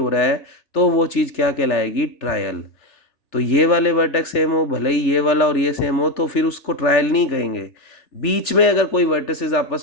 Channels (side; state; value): right; late; 3.4 ms